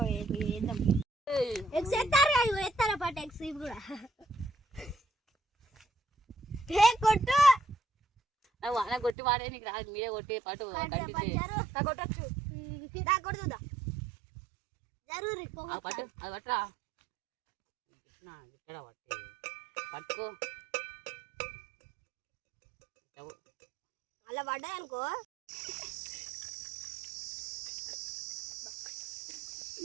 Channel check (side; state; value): left; drops out; at 9.2 s